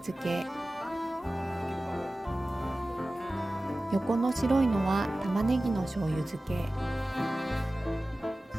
け、横の白いのは玉ねぎの醤油漬け、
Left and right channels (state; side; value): normal; both; correlation 0.96